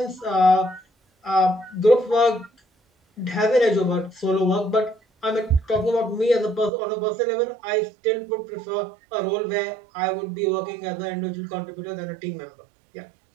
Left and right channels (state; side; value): drops out; left; at 6.7 s